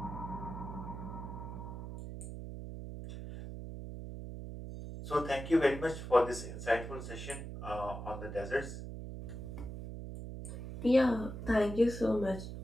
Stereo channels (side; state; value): right; noise; hum, 8 dB below the sound